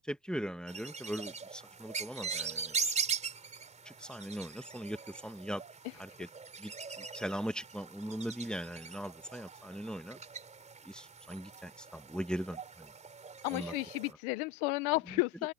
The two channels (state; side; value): normal; both; correlation 0.32